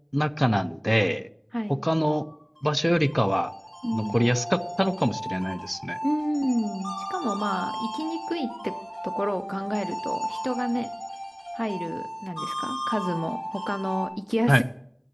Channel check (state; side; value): identical; both; correlation 1.00